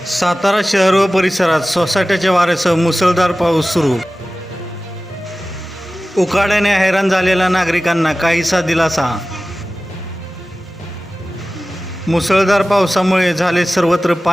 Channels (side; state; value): both; normal; correlation 0.96